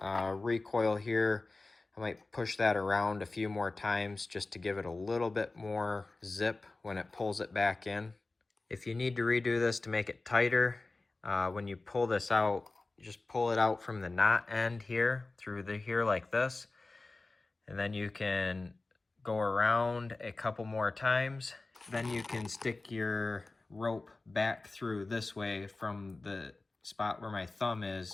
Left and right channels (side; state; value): right; quieter; 3.3 dB